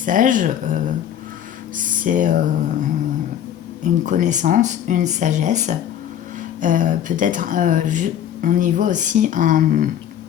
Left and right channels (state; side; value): quieter; right; 10.1 dB